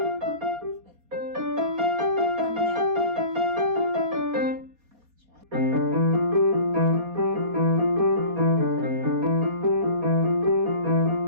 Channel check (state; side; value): late; left; 4.2 ms